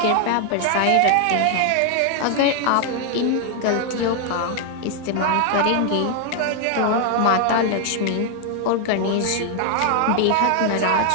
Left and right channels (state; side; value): different; both; correlation 0.00